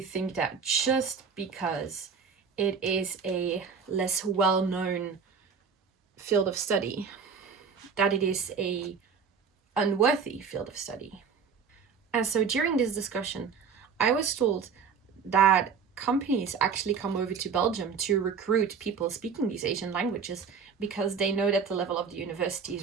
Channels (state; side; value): quieter; left; 6.0 dB